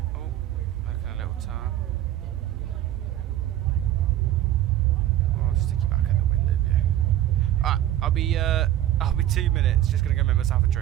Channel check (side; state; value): left; quieter; 12.8 dB